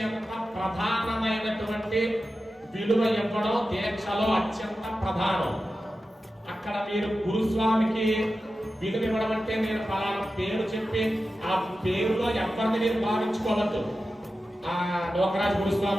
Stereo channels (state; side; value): normal; both; correlation 0.93